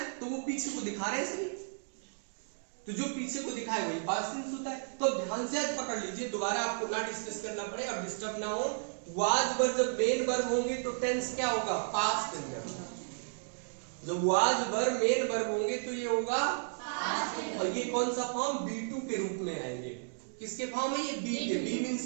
तो वो पीछे को दिखा रहे हैं सभी, तो जो पीछे को दिखाए वही पास्ट टेंस होता है। तो ध्यान से आज पकड़ लीजिए, दोबारा आपको ना डिस्कस करना पड़े और डिस्टर्ब ना हो। वाज वर्ब जब मेन वर्ब होंगे तो टेंस क्या होगा? Past tense. जब वाज वर्ब मेन वर्ब होंगे तो ये होगा पास्ट टेंस। और ये कौन सा फॉर्म? बी2 के रूप में आएंगे। किसके फॉर्म है ये? बी के। बी मींस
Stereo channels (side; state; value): left; silent; digital silence